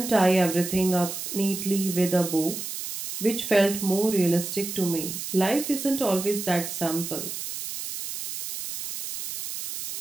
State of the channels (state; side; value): noise; right; hiss, 7 dB below the sound